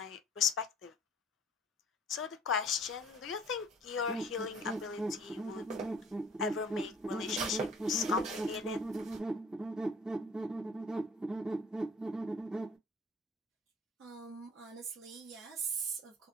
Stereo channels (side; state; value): both; normal; correlation 0.52